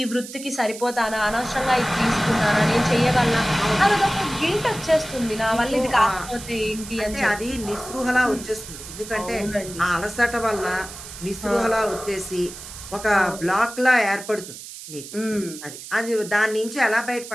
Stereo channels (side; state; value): right; noise; hiss, 13 dB below the sound